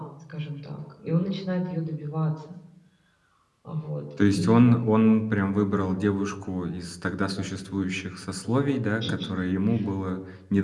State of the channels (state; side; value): identical; both; correlation 1.00